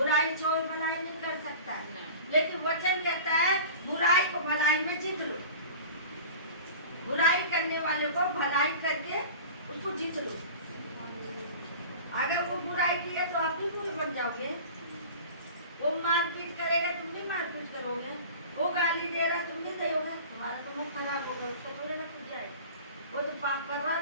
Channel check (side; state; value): both; inverted; correlation -0.38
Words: छोड़ भलाई नहीं कर सकता है। लेकिन वचन कहता है बुराई को भलाई में जीत लो। बुराई करने वाले को भलाई करके उसको जीत लो। अगर वो बुराई की है तो आप भी बुरे बन जाओगे। वो मारपीट करेगा, तुम भी मारपीट करोगे। वो गाली दे रहा, तुम भी दोगे। तुम्हारा तो मुंह खराब होगा, उसको थोड़े ना कुछ जाए। वो तो पाप कर रहा